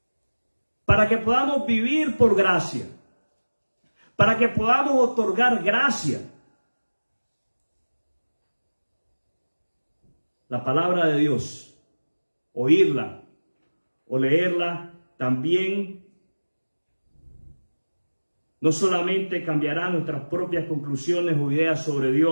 para que podamos vivir por gracia, para que podamos otorgar gracia. La palabra de Dios, oírla o leerla, también no solamente cambiará nuestras propias conclusiones o ideas sobre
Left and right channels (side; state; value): both; inverted; correlation -1.00